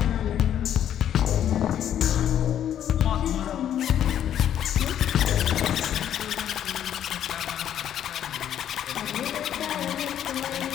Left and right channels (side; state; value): right; quieter; 10.2 dB